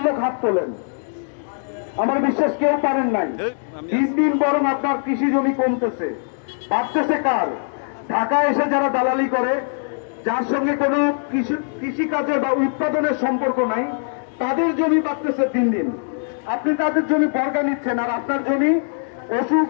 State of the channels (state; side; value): silent; right; digital silence